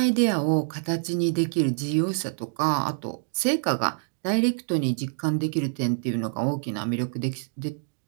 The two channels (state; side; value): silent; left; digital silence